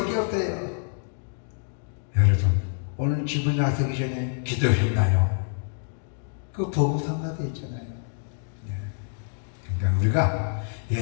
없어요. 여러분, 오늘 집을 나서기 전에 기도했나요? 그 보고상가도 있잖아요. 그러니까 우리가,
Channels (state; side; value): silent; right; digital silence